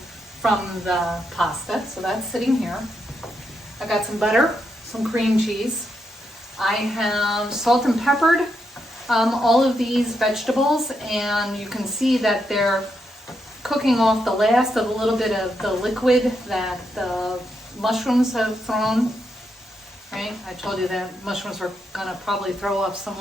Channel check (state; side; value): normal; both; correlation 0.82